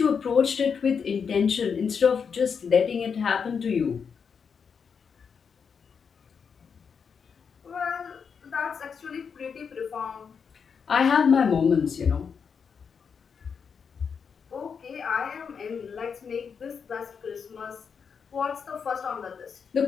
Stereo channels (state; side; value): quieter; right; 6.3 dB